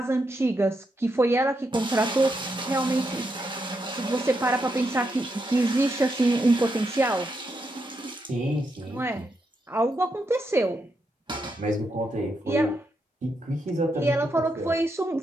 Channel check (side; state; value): both; normal; correlation 0.82